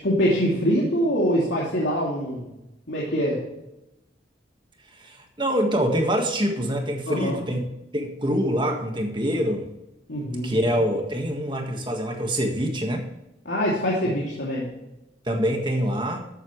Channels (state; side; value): normal; both; correlation 0.54